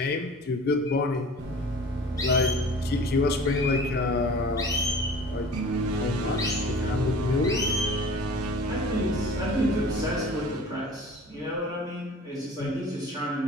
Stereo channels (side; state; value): both; normal; correlation 0.43